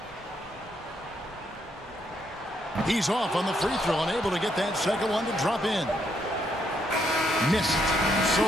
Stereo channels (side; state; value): both; normal; correlation 0.75